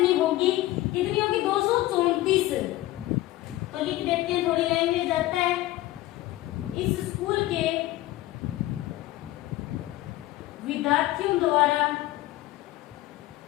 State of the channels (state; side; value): quieter; right; 16.6 dB